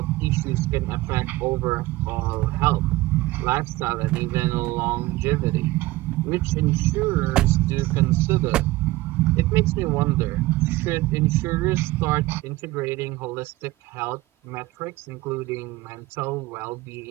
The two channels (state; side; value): quieter; left; 18.7 dB